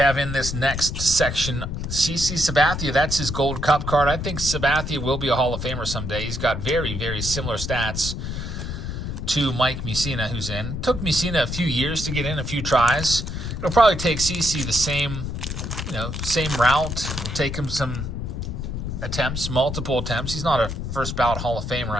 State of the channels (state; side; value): noise; left; rumble, 5 dB below the sound